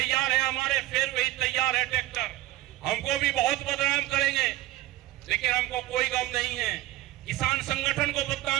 है हमारे, फिर वही तैयार है ट्रैक्टर। हमको भी बहुत बदनाम करेंगे, लेकिन हमको कोई गम नहीं है। किसान संगठन को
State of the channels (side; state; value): left; quieter; 16.3 dB